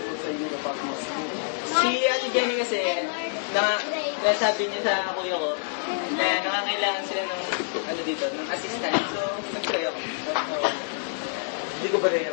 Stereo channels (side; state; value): right; silent; digital silence